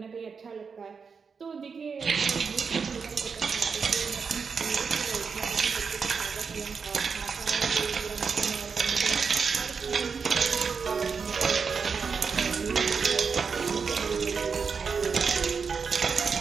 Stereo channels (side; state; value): left; quieter; 5.6 dB